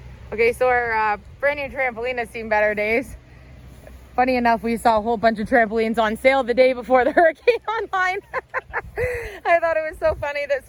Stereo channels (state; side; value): identical; both; correlation 1.00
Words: Okay, so our brand new trampoline has seen better days. Funny enough, we saw a whole bunch of trampolines on sale the day before the hurricane online. I thought it was so funny that